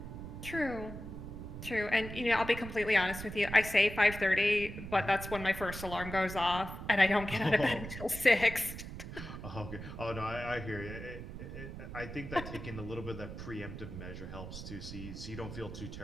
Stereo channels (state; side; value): noise; right; rumble, 9 dB below the sound